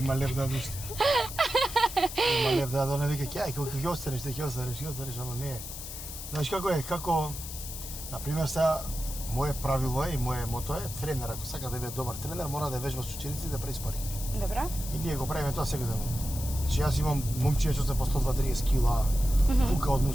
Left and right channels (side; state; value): left; noise; hiss, 9 dB below the sound